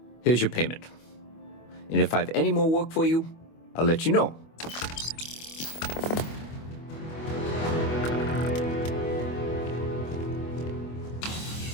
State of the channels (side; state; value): right; late; 25 ms